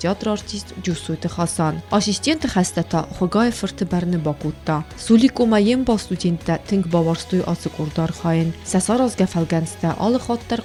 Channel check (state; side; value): identical; both; correlation 1.00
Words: آرتیست جوسوت خاصان آسیستنت خسته تا خگاه فرت برن باکوتا سولیکو ما یم با استودنت تنگ باورستوی آسکوردار خاین سسار از گفلگنسته آل خاطر